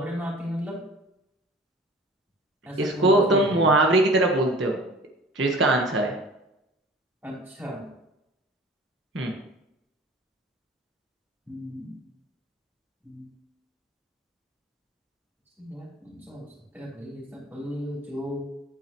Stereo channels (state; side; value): normal; both; correlation 0.44